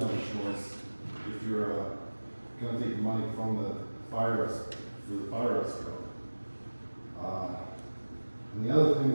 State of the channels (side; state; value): both; inverted; correlation -1.00